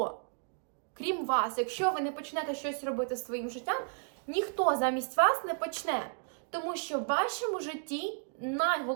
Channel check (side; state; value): left; silent; 56 dB below the other